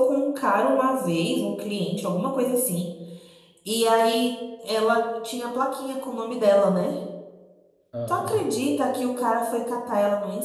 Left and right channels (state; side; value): identical; both; correlation 1.00